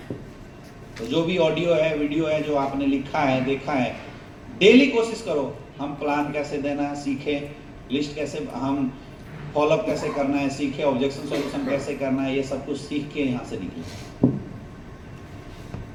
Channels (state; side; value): identical; both; correlation 1.00